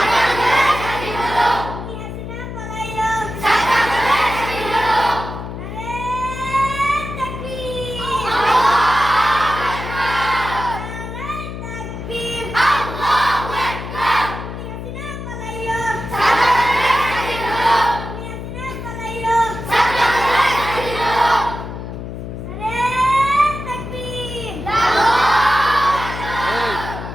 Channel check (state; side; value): noise; left; hum, 8 dB below the sound